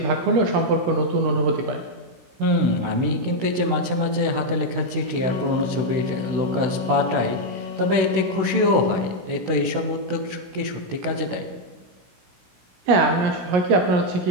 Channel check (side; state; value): left; late; 16 ms